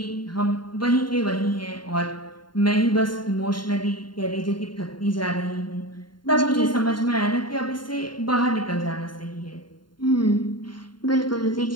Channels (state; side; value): late; right; 0.72 ms